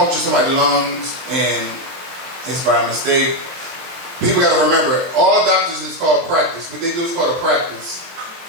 somebody's lungs and it's by mistake, people gotta remember, all doctors is called practice. What they do is called a practice.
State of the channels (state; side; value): late; left; 23 ms